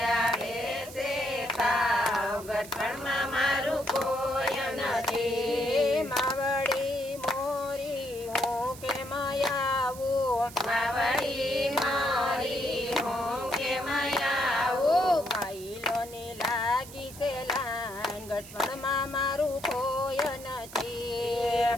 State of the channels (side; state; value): right; noise; hiss, 16 dB below the sound